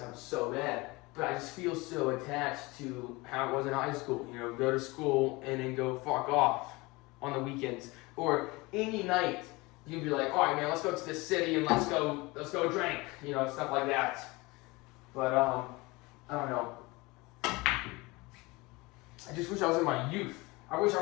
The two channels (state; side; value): quieter; right; 23.6 dB